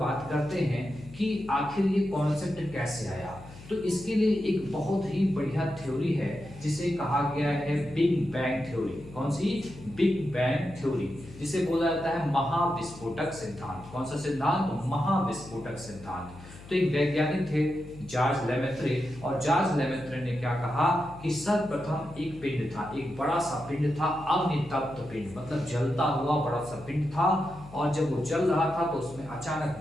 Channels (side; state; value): left; noise; hum, 18 dB below the sound